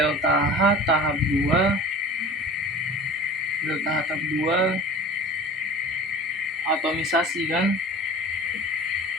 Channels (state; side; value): normal; both; correlation 0.40